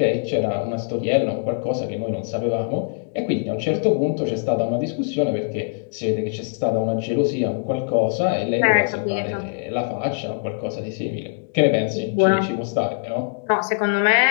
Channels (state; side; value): silent; right; digital silence